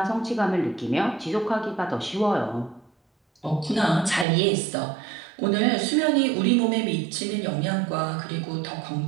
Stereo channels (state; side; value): drops out; left; at 4.2 s